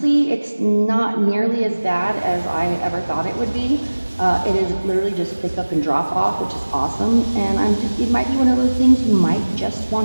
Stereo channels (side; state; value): both; inverted; correlation -1.00